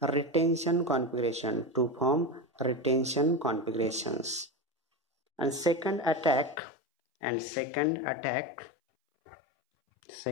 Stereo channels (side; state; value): right; drops out; at 6.6 s